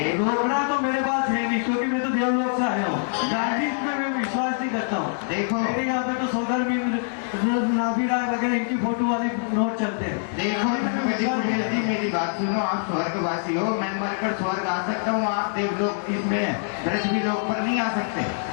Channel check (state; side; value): silent; right; digital silence